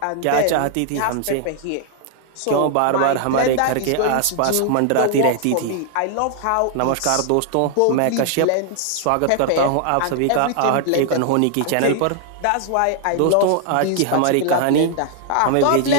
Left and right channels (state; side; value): different; both; correlation 0.00